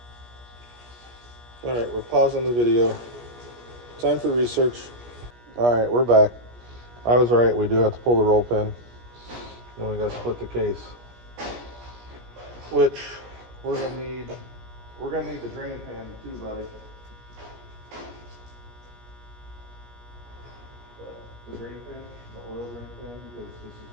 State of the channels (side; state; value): left; late; 17 ms